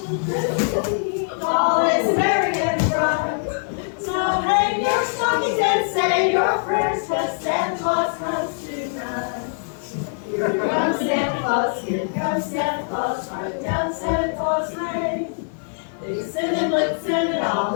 all is merry and bright. So hang your stockings and say your prayers, 'cause Santa Claus comes tonight. Here comes Santa Claus, here comes Santa Claus, right down Santa Claus Lane. Blitzen and all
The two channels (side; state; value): right; silent; 64 dB below the other